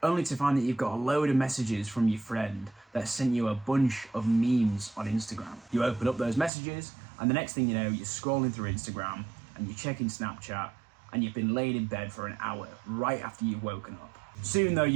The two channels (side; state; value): left; drops out; at 6.5 s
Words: only to find that you've got a load of messages from your friend that sent you a bunch of memes on Instagram. You open up those messages and the next thing you know, you're scrolling through Instagram and you're checking Snapchat and you've been laid in bed for an hour right after you've woken up. Soon though,